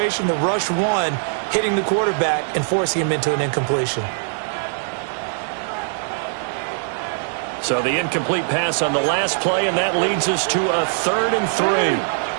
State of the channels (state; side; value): silent; left; digital silence